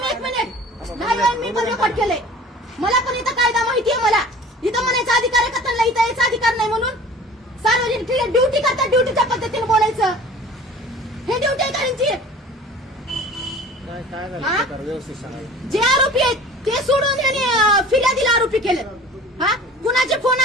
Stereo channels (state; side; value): normal; both; correlation 0.44